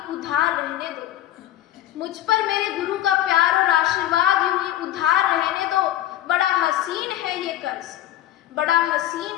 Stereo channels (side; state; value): right; quieter; 13.2 dB